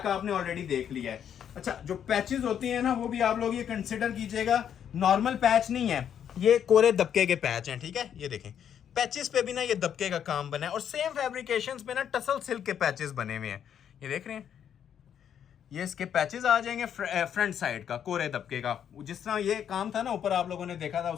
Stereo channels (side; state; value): right; quieter; 8.9 dB